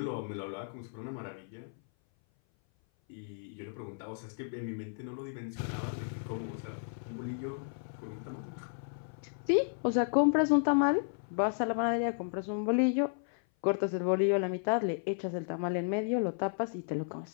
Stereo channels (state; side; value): silent; right; 55 dB below the other